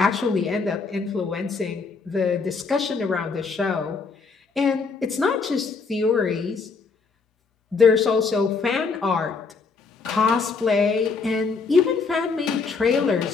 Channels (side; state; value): right; quieter; 4.7 dB